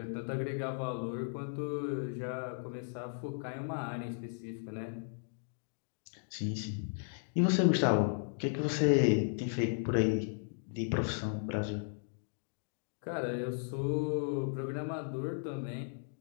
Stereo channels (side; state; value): right; silent; digital silence